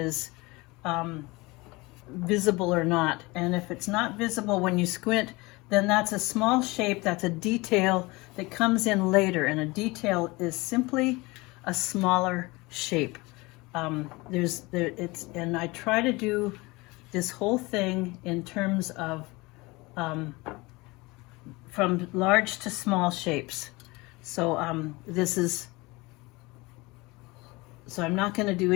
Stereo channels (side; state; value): right; quieter; 23.4 dB